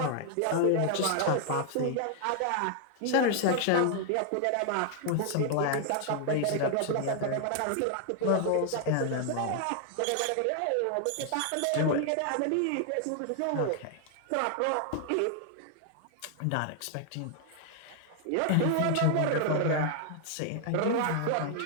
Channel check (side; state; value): both; different; correlation 0.00